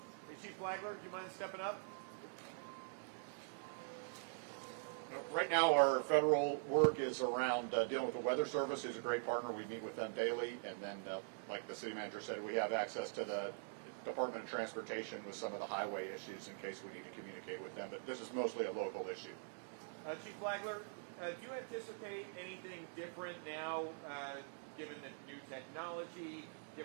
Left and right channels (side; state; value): left; silent; digital silence